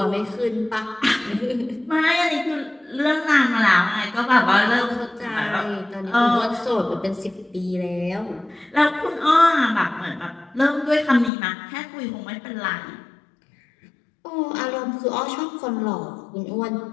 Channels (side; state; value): right; drops out; at 11.3 s